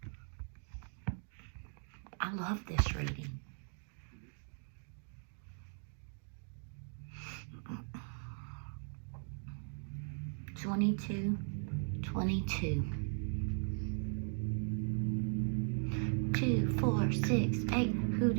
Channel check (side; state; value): left; silent; 52 dB below the other